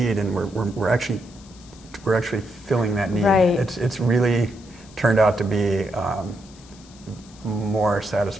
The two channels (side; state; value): left; noise; hiss, 24 dB below the sound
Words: and we're actually filling that need. Right. It's really turned out to be more